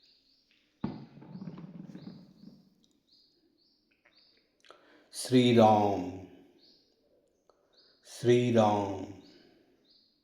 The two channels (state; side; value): identical; both; correlation 1.00